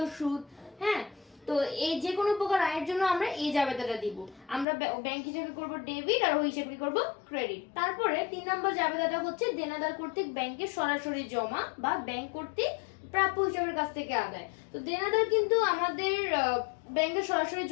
সুদ। হ্যাঁ, তো এই যে কোনো প্রকার আয়ের জন্য আমরা এই জাবেদাটা দিব। আমরা ব্যাংক হিসাবে করব ডেবিট আর ওই হিসাবে করব ক্রেডিট। তারপরে 3 নম্বর জাবেদাটা হচ্ছে দেনাদার কর্তৃক ব্যাংকে সরাসরি জমা বা ব্যাংক কর্তৃক প্রাপ্য হিসাবের কাছ থেকে আদায়। তো দেনাদার কিন্তু আমাদের ব্যাংকে সরাসরি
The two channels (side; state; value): right; drops out; at 4.7 s